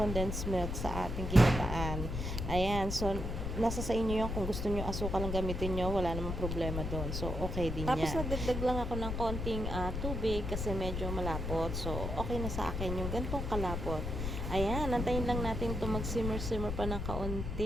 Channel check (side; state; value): left; noise; rumble, 3 dB below the sound